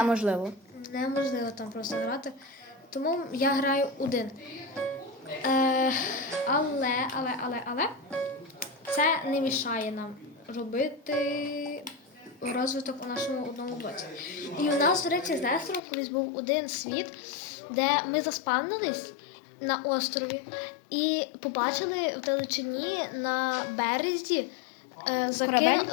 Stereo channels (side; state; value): right; drops out; at 15.8 s